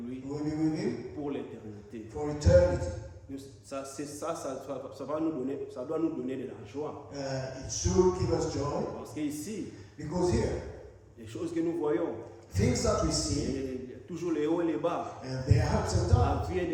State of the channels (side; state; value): both; identical; correlation 1.00